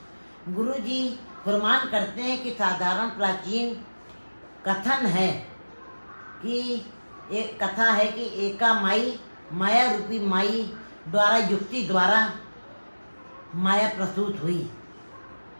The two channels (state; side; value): inverted; both; correlation -1.00